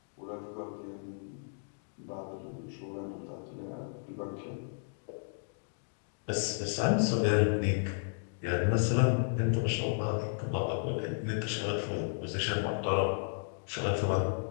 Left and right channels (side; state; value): right; silent; digital silence